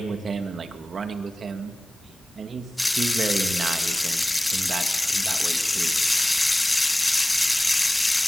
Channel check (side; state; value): both; normal; correlation 0.97